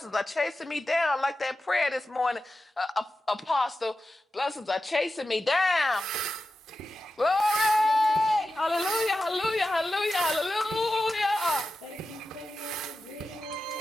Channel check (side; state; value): both; normal; correlation 0.92